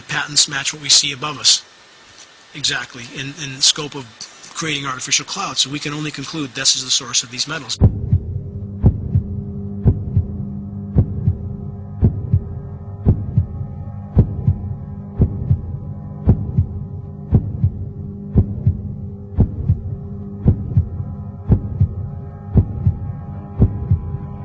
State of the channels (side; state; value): both; identical; correlation 1.00